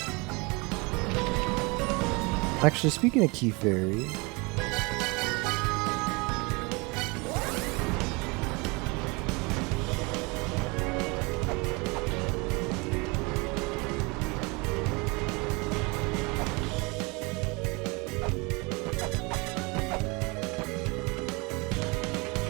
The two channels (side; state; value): left; quieter; 27.5 dB